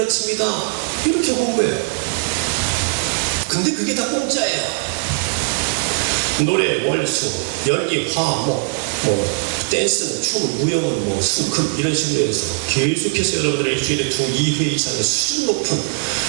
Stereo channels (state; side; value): silent; left; digital silence